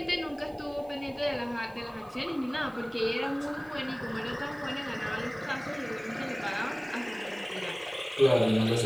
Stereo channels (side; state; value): right; noise; hiss, 28 dB below the sound